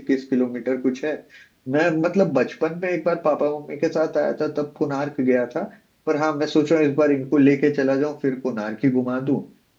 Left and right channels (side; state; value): both; identical; correlation 1.00